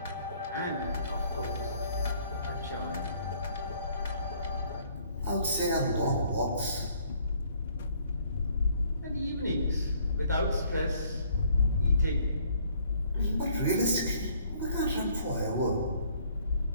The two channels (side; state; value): both; inverted; correlation -0.61